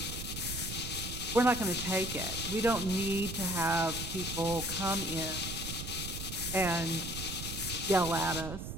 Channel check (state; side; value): noise; right; rumble, 7 dB below the sound